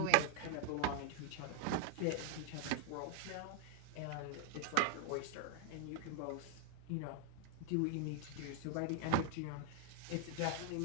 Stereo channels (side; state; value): both; different; correlation 0.00